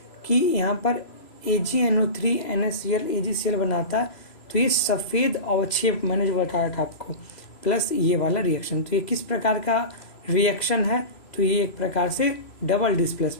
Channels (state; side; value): late; right; 3.0 ms